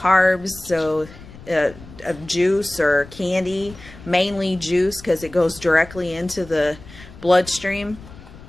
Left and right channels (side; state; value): left; noise; rumble, 18 dB below the sound